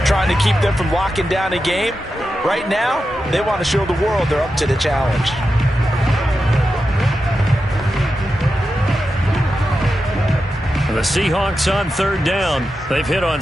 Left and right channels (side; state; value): both; normal; correlation 0.90